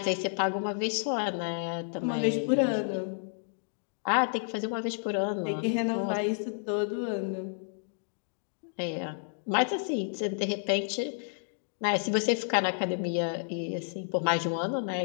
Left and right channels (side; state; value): right; silent; digital silence